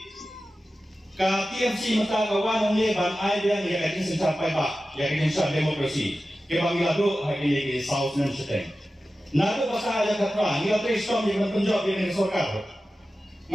KTMC mata kawan ini Bang Aidan yang akan mencapai Pak, yang akan demokrasi. Kebang iladu hari ini di South Nanseteng. Nado pasal ada kata, ni ada Islam yang menjawab yang kesorkal.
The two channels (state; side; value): normal; both; correlation 0.94